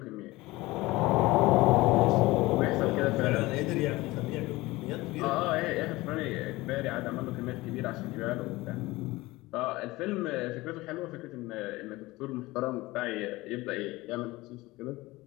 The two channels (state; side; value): quieter; right; 20.1 dB